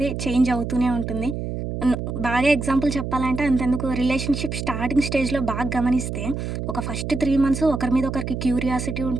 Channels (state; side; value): noise; right; hum, 4 dB below the sound